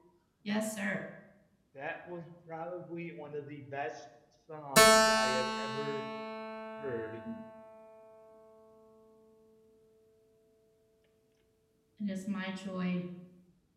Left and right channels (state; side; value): identical; both; correlation 1.00